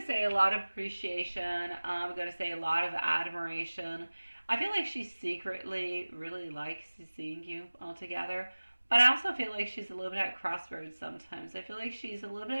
say a lot of appreciation. I'm going to say a lot of admiration. I feel like she secretly really likes seeing you all together. But I also feel like she's a little bit at crossroads sometimes. I feel like she's a little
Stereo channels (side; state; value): both; inverted; correlation -1.00